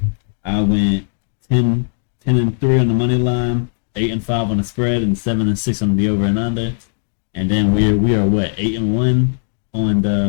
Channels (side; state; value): right; silent; digital silence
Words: I went 10 and 3 on the money line, 8 and 5 on the spread, and 7 and 6 on the over and under. And then we are what 8 and 1 on